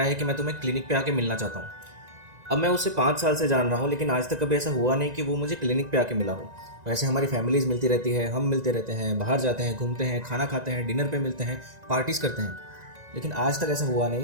है कि मैं तुम्हें क्लिनिक पे आके मिलना चाहता हूँ। अब मैं उससे 5 साल से जान रहा हूँ, लेकिन आज तक कभी ऐसा हुआ नहीं कि वो मुझे क्लिनिक पे आके मिला हो। वैसे हमारी फैमिलीज़ मिलती रहती है, हम मिलते रहते हैं, बाहर जाते हैं, घूमते हैं, खाना खाते हैं, डिनर पे मिलते हैं, पार्टीज़ करते हैं, लेकिन आज तक ऐसा हुआ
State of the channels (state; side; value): late; left; 1.9 ms